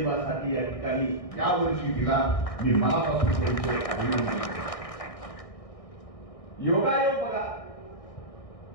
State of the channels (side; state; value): right; late; 1.6 ms